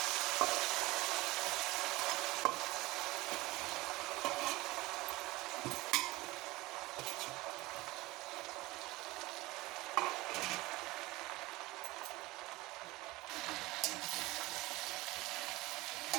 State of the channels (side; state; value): left; quieter; 20.6 dB